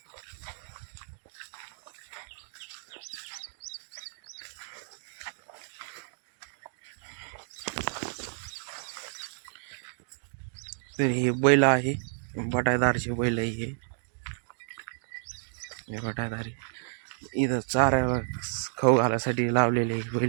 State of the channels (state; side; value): silent; left; digital silence